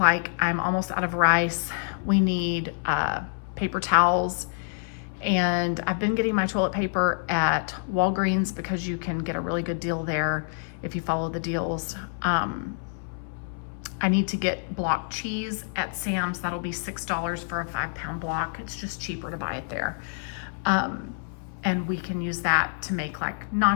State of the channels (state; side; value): silent; right; 60 dB below the other